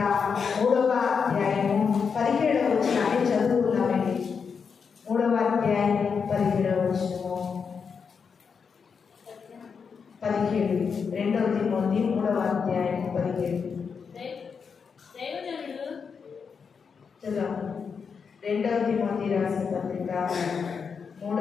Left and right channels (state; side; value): quieter; right; 6.0 dB